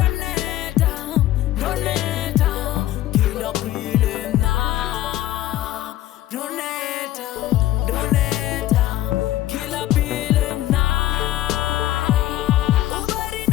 kila pile na ndoneta kila pile na ubari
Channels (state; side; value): quieter; right; 14.2 dB